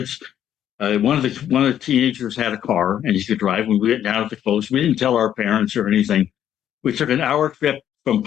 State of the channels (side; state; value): right; quieter; 10.4 dB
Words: One of the teenagers had a car and he could drive. We went down to the coast. We didn't tell our parents or anything. We took an hour trip from